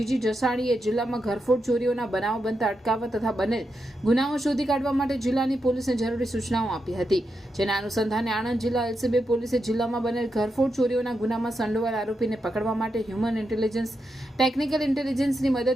જસાણીએ જિલ્લામાં ઘરફોડ ચોરીઓના બનાવો બનતા અટકાવવા તથા બનેલ ગુનાઓ શોધી કાઢવા માટે જિલ્લાની પોલીસને જરૂરી સૂચનાઓ આપી હતી। જેના અનુસંધાને આણંદ જિલ્લા એલસીબી પોલીસે જિલ્લામાં બનેલ ઘરફોડ ચોરીઓના ગુનામાં સંડોવાયેલ આરોપીને પકડવા માટે હ્યુમન ઇન્ટેલિજન્સ, ટેકનિકલ ઇન્ટેલિજન્સની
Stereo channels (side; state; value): both; normal; correlation 0.85